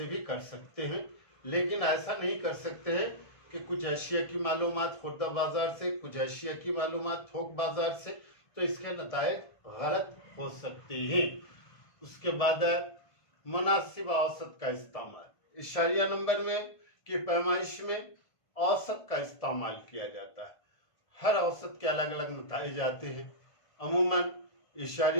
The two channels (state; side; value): late; right; 1.5 ms